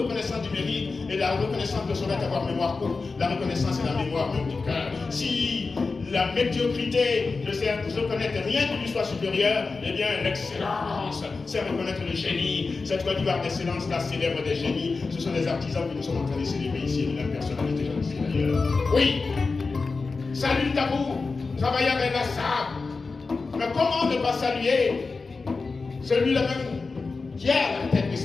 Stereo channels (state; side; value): quieter; right; 4.2 dB